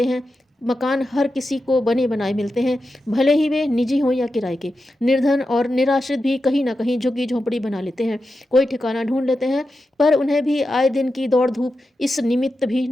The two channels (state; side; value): normal; both; correlation 0.90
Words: हैं। मकान हर किसी को बने बनाए मिलते हैं, भले ही वे निजी हों या किराए के। निर्धन और निराश्रित भी कहीं ना कहीं झुग्गी झोंपड़ी बना लेते हैं, कोई ठिकाना ढूंढ लेते हैं, पर उन्हें भी आए दिन की दौड़ धूप इस निमित्त भी